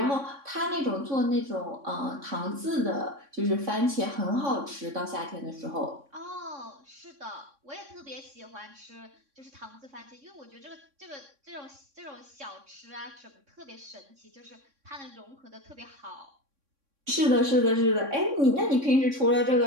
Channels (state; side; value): late; left; 3.6 ms